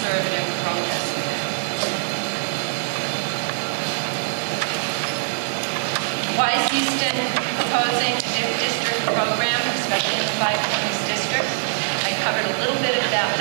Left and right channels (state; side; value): silent; left; 58 dB below the other